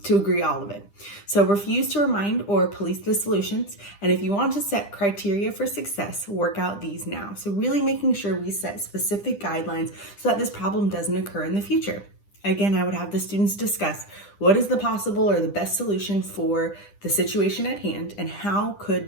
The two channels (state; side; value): late; right; 10 ms